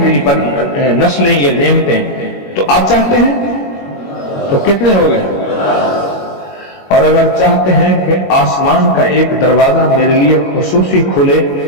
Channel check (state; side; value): late; right; 21 ms